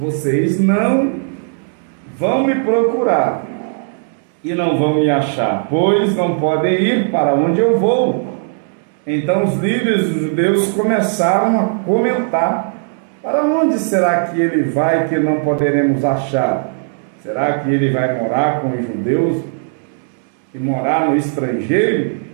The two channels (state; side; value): silent; left; digital silence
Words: não vão me procurar e não vão me achar, pois não podem ir para onde eu vou. Então os líderes dos judeus começaram a comentar: para onde será que ele vai que não poderemos achar? Será que ele vai morar com os judeus e morar no estrangeiro?